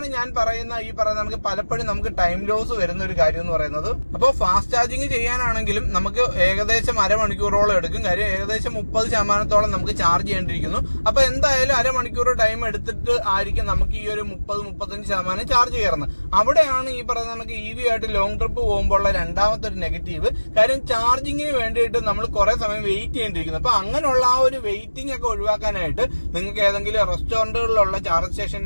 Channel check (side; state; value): both; inverted; correlation -1.00